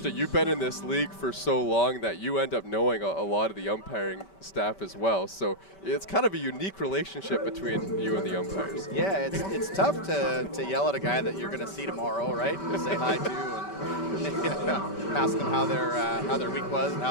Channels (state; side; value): late; right; 5.2 ms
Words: You've been in this league for so long that you end up knowing a lot of the umpiring staff as well. So it's kind of a unique relationship between you and the umpires. Yeah, it's tough to yell at a guy that you're going to see tomorrow, right? And say hi to and ask them how their week was and